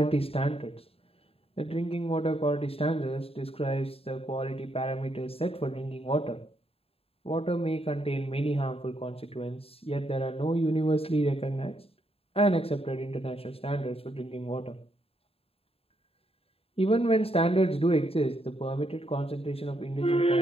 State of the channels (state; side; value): late; right; 0.28 ms